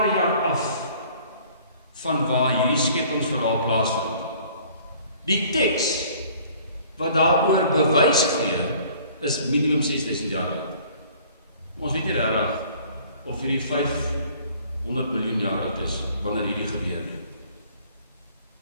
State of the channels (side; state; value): both; inverted; correlation -0.54